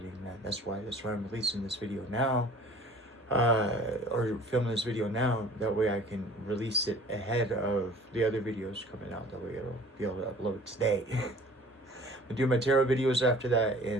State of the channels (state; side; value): normal; both; correlation 0.49